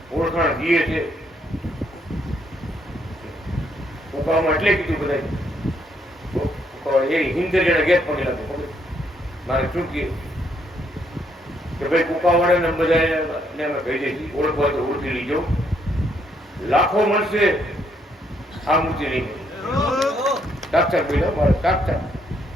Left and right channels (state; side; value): normal; both; correlation 0.72